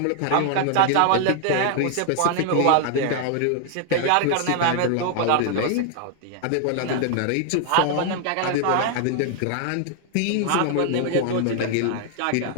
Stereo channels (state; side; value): different; both; correlation 0.00